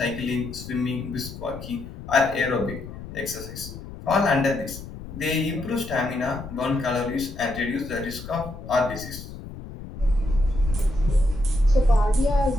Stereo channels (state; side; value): noise; left; rumble, 12 dB below the sound